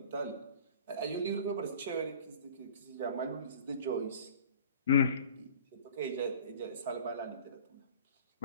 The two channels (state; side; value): inverted; both; correlation -0.45